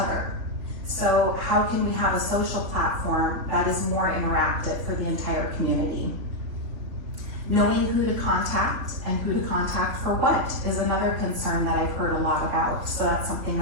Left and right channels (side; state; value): left; late; 3.5 ms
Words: So how can we have a social platform that is more interactive for the entire community? Knowing who to contact and who to contact for what is another concern that I've heard a lot about. So that's something